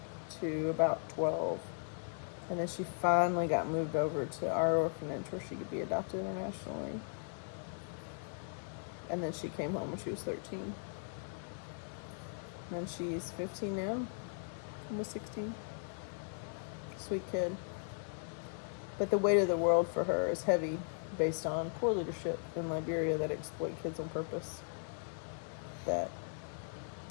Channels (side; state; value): right; silent; digital silence